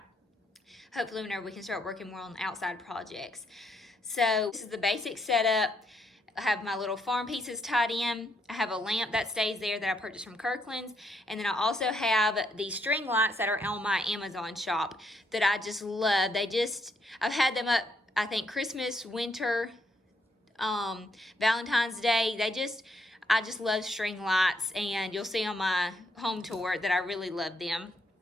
Hopefully whenever we can start working more on outside projects. So this is the basic setup. I have my little farm pieces tied in. I have a lamp that stays there that I purchased from Kirkland's. And then I also have the string lights that are on my Amazon shop that I just love. I've had them up, I think, Christmas, winter, Valentine's Day. I just love string lights, and you'll see on my home tour that I really love them.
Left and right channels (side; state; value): both; normal; correlation 0.75